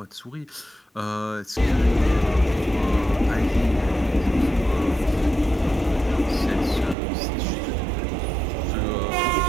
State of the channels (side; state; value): left; drops out; at 7.0 s